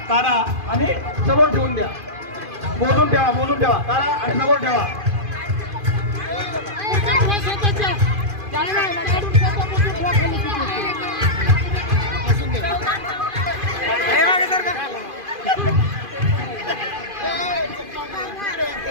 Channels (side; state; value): left; late; 2.5 ms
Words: काढा आणि समोर ठेवून द्या. मोजून ठेवा काढा आणि समोर ठेवा. हे मागे सर का.